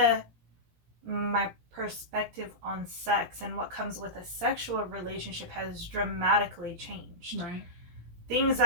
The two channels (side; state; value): left; late; 17 ms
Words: my perspective on sex and what comes with a sexual relationship has dramatically changed. Right. Things